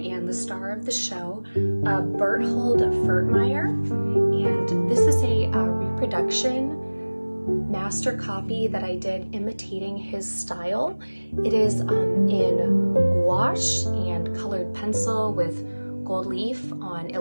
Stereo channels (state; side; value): inverted; both; correlation -1.00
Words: the star of the show, Berthold Furtmeyr. And this is a reproduction master copy that I did imitating his style. It is in gouache and colored pencil with gold leaf on